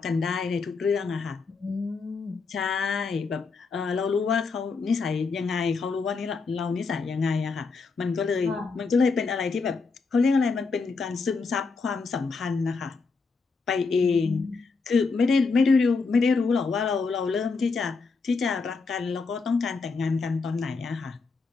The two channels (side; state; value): right; quieter; 4.5 dB